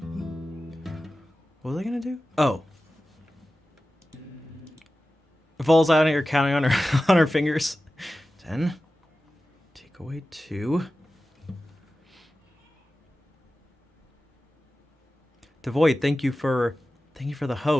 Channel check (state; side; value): normal; both; correlation 0.95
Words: What was I gonna do? Oh. Falls out and you're counting on her on her fingers. 10. Take away 2. Devoid, thank you for the